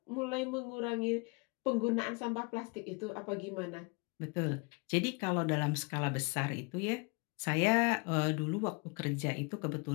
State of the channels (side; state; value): right; quieter; 32.3 dB